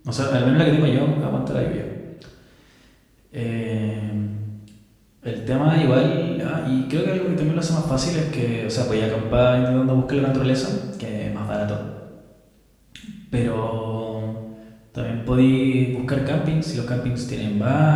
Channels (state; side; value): identical; both; correlation 1.00